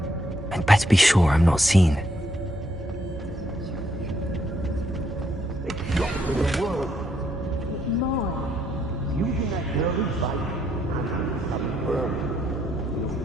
I'd better be sure I'm not seen.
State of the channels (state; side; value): normal; both; correlation 0.73